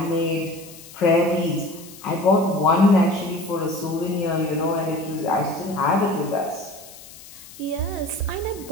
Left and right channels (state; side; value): noise; left; hiss, 18 dB below the sound